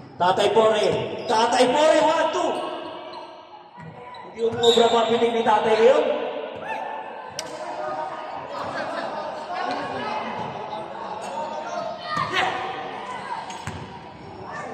Tatay Pore, 1-2. Hindi umubra mapinig ni Tatay ngayon.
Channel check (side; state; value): both; identical; correlation 1.00